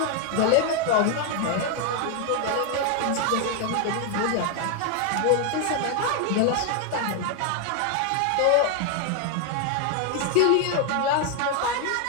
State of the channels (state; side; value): different; both; correlation 0.01